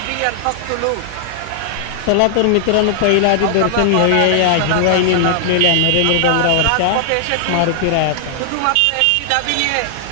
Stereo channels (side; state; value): both; different; correlation -0.01